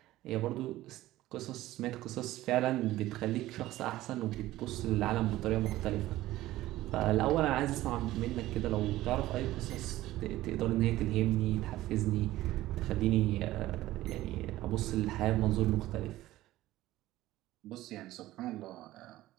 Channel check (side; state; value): left; quieter; 15.9 dB